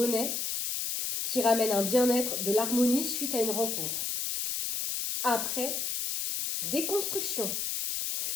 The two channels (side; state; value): left; noise; hiss, 1 dB below the sound